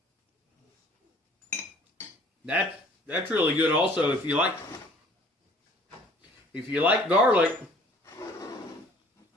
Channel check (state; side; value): normal; both; correlation 0.54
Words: That's really good also. If you like garlic,